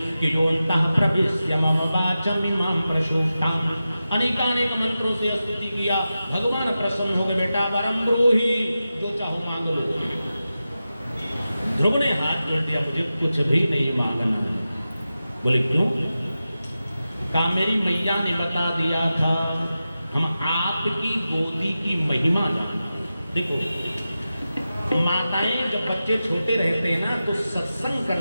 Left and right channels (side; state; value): both; inverted; correlation -0.93